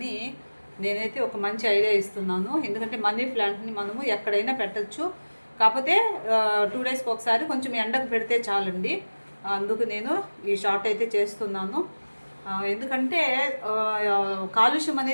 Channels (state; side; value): inverted; both; correlation -1.00